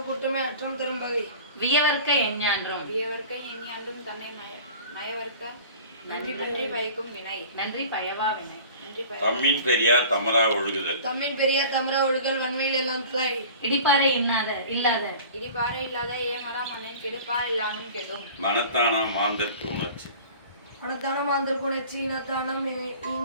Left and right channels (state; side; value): inverted; both; correlation -0.42